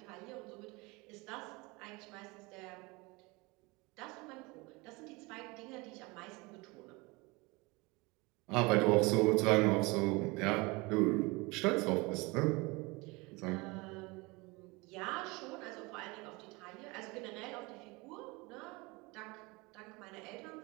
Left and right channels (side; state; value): left; quieter; 25.1 dB